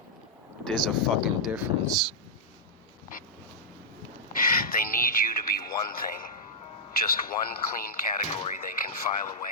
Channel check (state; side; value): normal; both; correlation -0.08